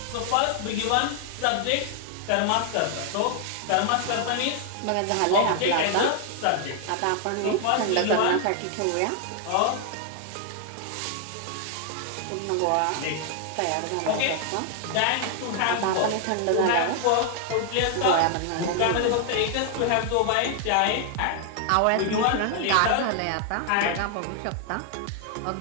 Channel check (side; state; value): both; different; correlation 0.00